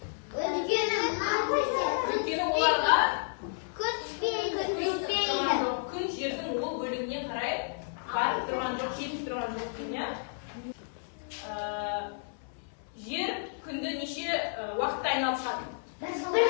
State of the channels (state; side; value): silent; right; 57 dB below the other